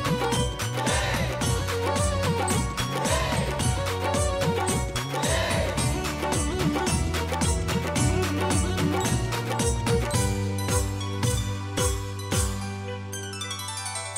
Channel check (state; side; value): identical; both; correlation 1.00